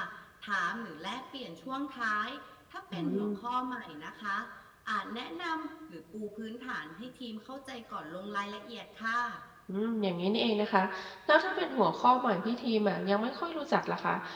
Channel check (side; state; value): both; identical; correlation 1.00